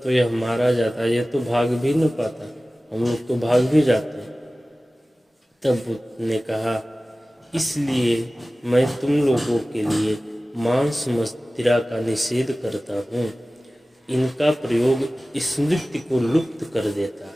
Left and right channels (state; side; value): normal; both; correlation 0.97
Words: तो यह मारा जाता, यह तो भाग भी न पाता, हम लोग तो भाग भी जाते। तब बुद्ध ने कहा इसलिए मैं तुम लोगों के लिए मांस मदिरा का निषेध करता हूँ। इनका प्रयोग स्मृति को लुप्त कर देता